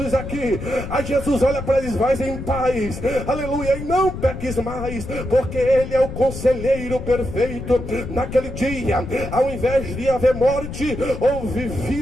aqui. Aí Jesus olha para eles: vai em paz, aleluia, e não peques mais, porque ele é o conselheiro perfeito. Naquele dia, ao invés de haver morte, houve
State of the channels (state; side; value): noise; left; rumble, 8 dB below the sound